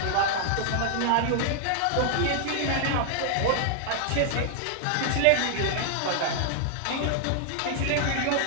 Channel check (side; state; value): both; different; correlation 0.00